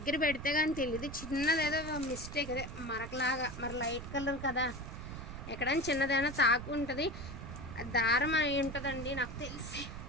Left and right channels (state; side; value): noise; right; rumble, 9 dB below the sound